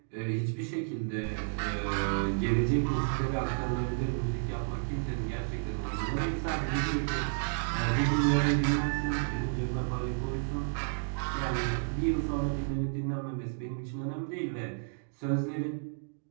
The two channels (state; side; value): silent; left; digital silence